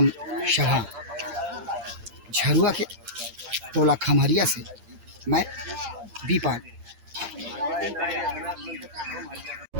सभा झरुआ के टोला खमहरिया से मैं बीपाल।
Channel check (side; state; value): left; late; 8.7 ms